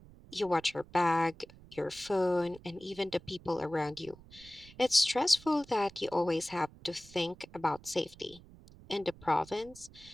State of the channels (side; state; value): right; noise; rumble, 21 dB below the sound